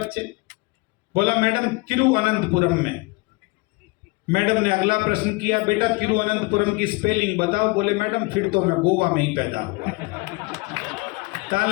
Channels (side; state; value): right; quieter; 25.8 dB